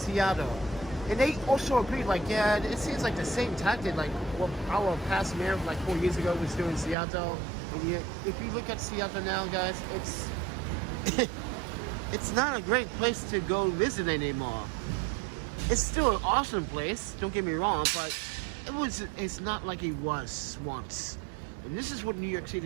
and they also agreed. Like, yeah, it seems like the same tactic like what our past mayor, like 4 years ago, was doing in Seattle. And yet, if you look at Seattle now, guys, it's not a great place to go visit anymore. It's still an awesome place, don't get me wrong, but it's not like it was once. And this is what New York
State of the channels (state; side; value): drops out; left; at 7.0 s